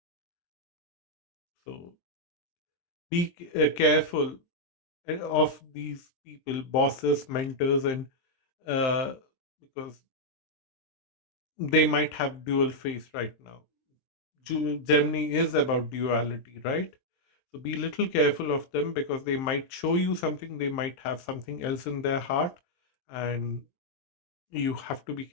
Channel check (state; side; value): late; right; 23 ms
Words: So be careful of these people, bosses, mentors, and uh, because they might have dual face right now. Gemini is about duality, right? So be little careful of them, because they might show you something, they might have something else in their heart, and you have to be